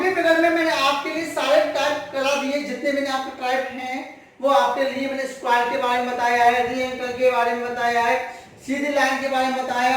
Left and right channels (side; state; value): both; identical; correlation 1.00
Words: फिगर में मैंने आपके लिए सारे टाइप करा दिए, जितने मैंने आपके टाइप हैं वो आपके लिए मैंने स्क्वायर के बारे में बताया है, री एंगल के बारे में बताया है, सीधी लाइन के बारे में